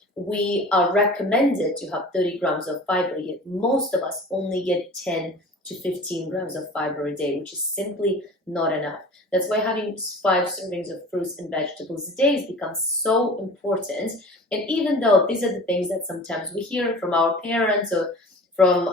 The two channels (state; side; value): normal; both; correlation 0.40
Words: we are recommended to have 30 grams of fiber, yet most of us only get 10 to 15 grams of fiber a day, which is simply not enough. That's why having 5 servings of fruits and vegetables a day has become so important. And even though these are the things that sometimes we hear from our parents or